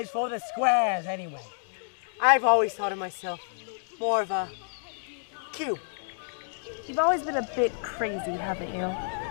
for the squares anyway. I've always thought of myself more of a cube. You've always been a bit crazy, haven't you?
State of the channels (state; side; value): silent; right; digital silence